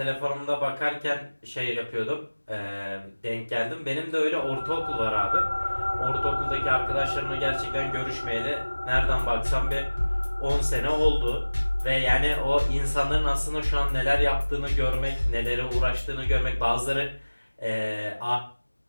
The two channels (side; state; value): both; inverted; correlation -1.00